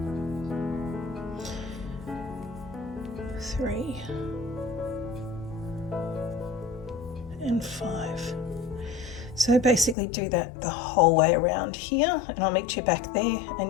3 and 5. So basically do that the whole way around here, and I'll meet you back there,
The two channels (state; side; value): drops out; right; at 10.0 s